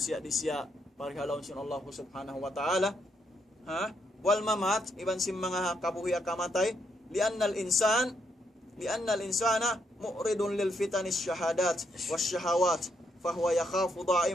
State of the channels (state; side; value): normal; both; correlation 0.76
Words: di siya pari halom sin Allah subhanahu wa ta'ala. Wal mamat iban sim mga kabuhi akamatay li'annal insana mu'ridun lil fitanis syahadat was syahawat fahuwa yakhafu